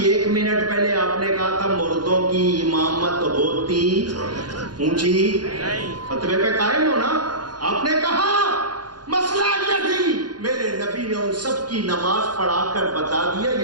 1 منٹ پہلے آپ نے کہا تھا مردوں کی امامت ہوتی اونچی، فتوے پہ قائم ہو نا؟ آپ نے کہا مسئلہ یہ تھی، میرے نبی نے ان سب کی نماز پڑھا کر بتا دیا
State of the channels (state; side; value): late; left; 0.70 ms